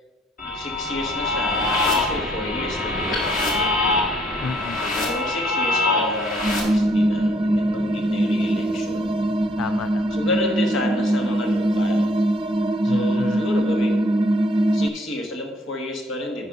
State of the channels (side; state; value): both; normal; correlation 0.66